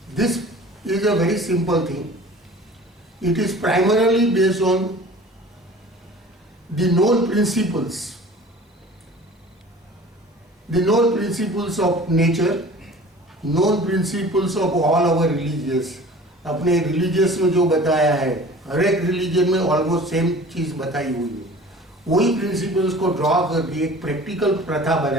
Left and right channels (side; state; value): both; normal; correlation 0.44